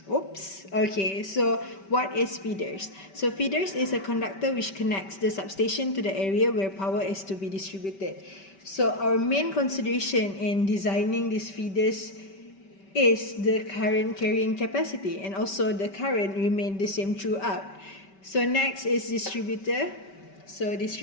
Oops. Okay, so what is feeders? So feeders is a conductor which connects the substation to the area where power is to be distributed. So our main consideration in designing these feeders is the current carrying capacity, and also the current remain the same throughout. So next is distributor. So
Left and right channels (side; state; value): right; late; 5.2 ms